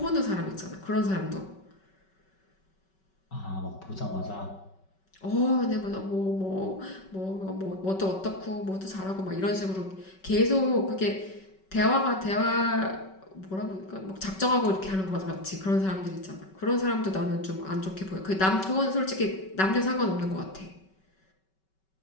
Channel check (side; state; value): right; late; 5.3 ms